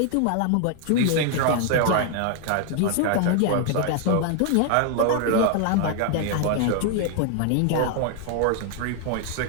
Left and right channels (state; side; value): different; both; correlation 0.00